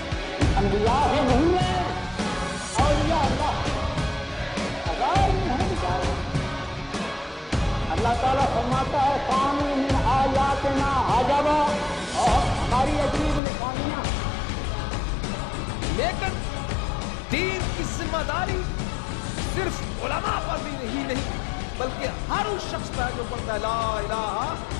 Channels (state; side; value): drops out; right; at 13.4 s